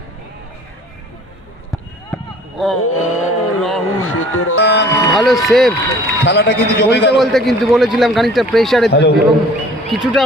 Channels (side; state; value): both; normal; correlation 0.50